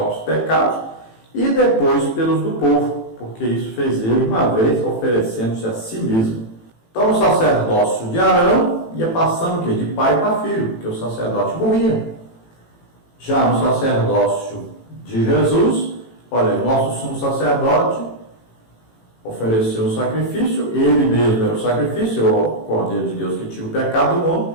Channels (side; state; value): right; late; 18 ms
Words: pecados e depois pelos do povo, porque isso fez ele uma vez, oferecendo-se a si mesmo. Então o sacerdócio de Arão ia passando o quê? De pai para filho, porque o sacerdote morria. Já no sacerdócio de Jesus, olha, nosso sumo sacerdote ofereceu o sacrifício, ele mesmo era o sacrifício, o Cordeiro de Deus que tira o pecado do mundo,